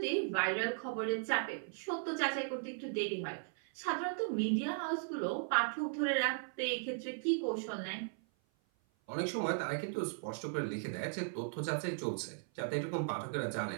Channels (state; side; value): silent; left; 53 dB below the other